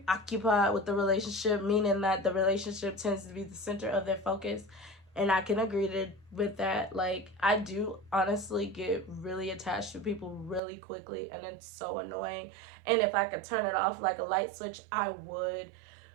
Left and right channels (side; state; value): left; drops out; at 10.6 s